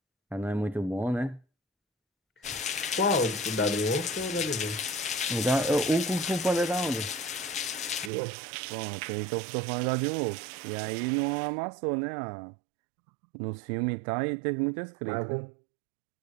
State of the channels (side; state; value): left; drops out; at 8.1 s